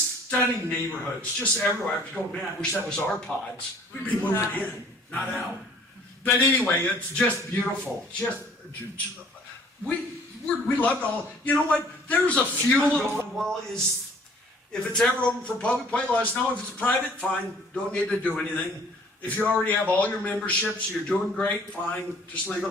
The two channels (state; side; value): normal; both; correlation 0.55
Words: stunning neighborhoods, just everywhere. I was going, man, I wish that was our pods. We'd be moving in, not out. But anyway, it's just beautiful. We loved all. You know what? There's a few little. Well, if it's ever open for public play, let us know. If it's private, fine. Don't need to do anything. If you already have all your memberships, you're doing great, fine. Just leave it